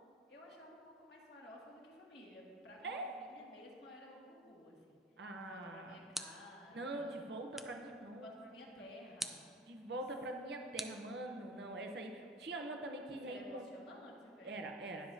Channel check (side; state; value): both; normal; correlation 0.38